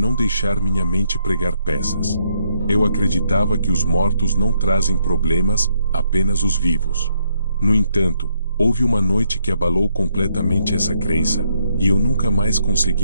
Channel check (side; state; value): both; inverted; correlation -0.74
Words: deixar minha mente pregar peças. Eu acreditava que os mortos não trazem problemas, apenas os vivos. No entanto, houve uma noite que abalou completamente essa crença, e eu nunca mais